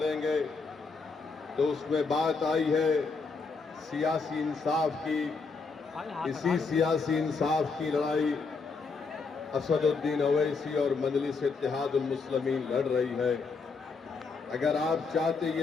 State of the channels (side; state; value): right; quieter; 4.5 dB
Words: तो उसमें बात आई है सियासी इंसाफ की। इसी सियासी इंसाफ की लड़ाई असदुद्दीन ओवैसी और मजलिस इत्तेहादुल मुस्लिमीन लड़ रही है। अगर आप चाहते